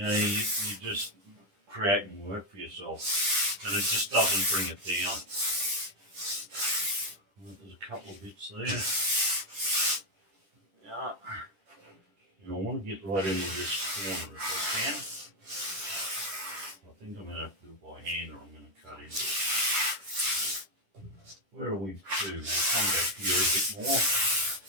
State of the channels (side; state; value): left; late; 10 ms